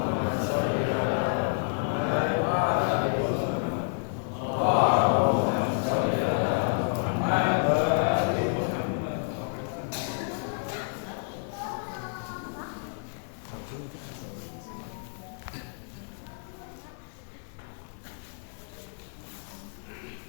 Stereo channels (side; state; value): right; silent; digital silence